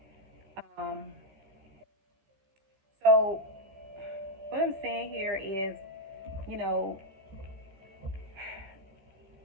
Um, so what I'm saying here is, you know,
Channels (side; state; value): left; late; 15 ms